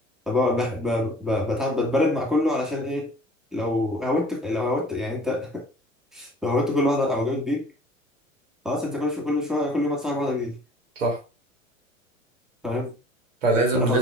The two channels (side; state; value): both; normal; correlation 0.49